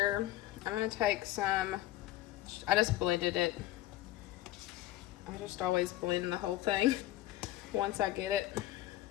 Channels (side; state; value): right; quieter; 15.2 dB